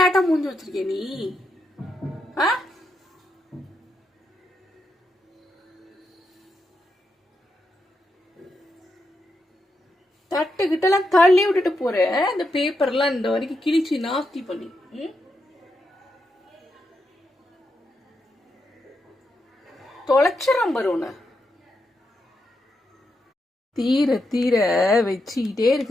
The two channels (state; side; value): normal; both; correlation 0.83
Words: மூஞ்சி வச்சிருக்கே நீ. ஆ, தட்டுக்கிட்டலாம் தள்ளி விட்டுட்டு போற. இந்த பேப்பர்லாம் இந்த வரைக்கும் கிழிச்சு நாஸ்தி பண்ணி தொலைச்சிடம் பருவன தீர தீர வச்சுக்கிட்டே